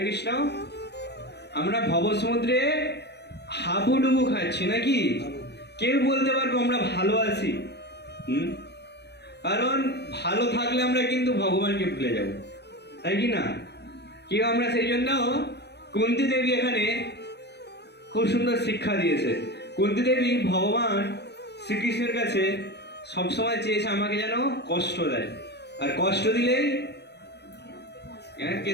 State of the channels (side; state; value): right; late; 0.49 ms